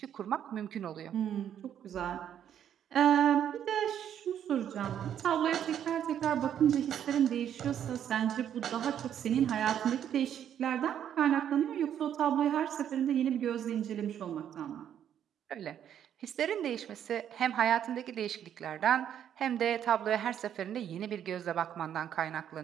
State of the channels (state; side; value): quieter; left; 9.7 dB